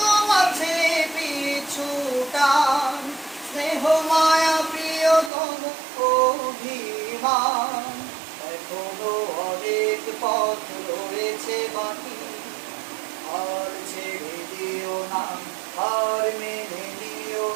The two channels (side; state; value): left; drops out; at 5.3 s